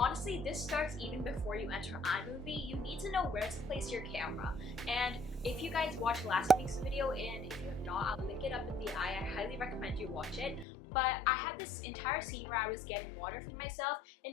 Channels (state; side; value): drops out; right; at 10.7 s